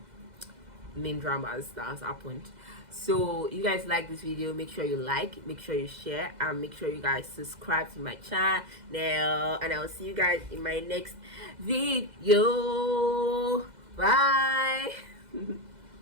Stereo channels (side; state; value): left; late; 2.0 ms